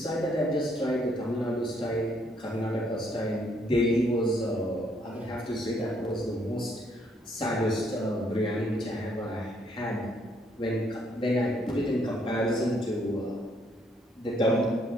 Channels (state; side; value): normal; both; correlation 0.69